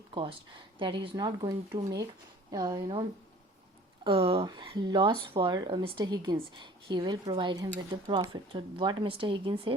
cost, that he is not going to make loss for Mr. Higgins. He will provide him with the profit. So what Mr. Higgins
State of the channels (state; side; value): normal; both; correlation 0.49